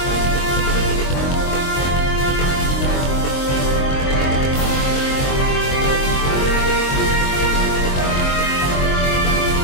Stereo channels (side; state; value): right; late; 22 ms